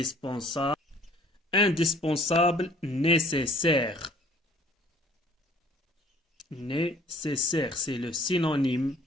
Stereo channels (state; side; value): normal; both; correlation 0.56